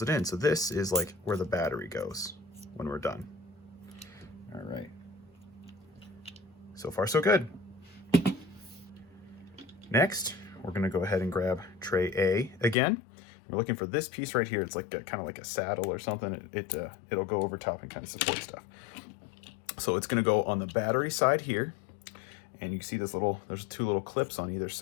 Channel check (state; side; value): drops out; right; at 12.8 s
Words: it in. So this is like where the battery goes when we're done. All right. So far, so good. Next, we're gonna go ahead and grab tray A again. We're looking for this piece right here. It's like kind of like a saddle or something. It'll go over top and kind of support stuff. So it's gonna go on the battery side here. And you can see there's 2 little clips on either